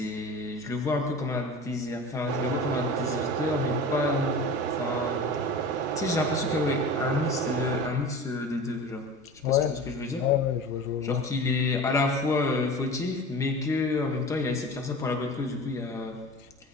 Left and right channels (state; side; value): normal; both; correlation 0.35